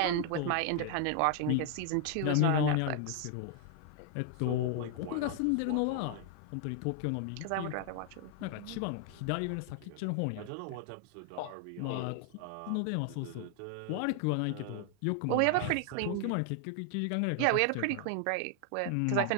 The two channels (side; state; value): both; different; correlation 0.00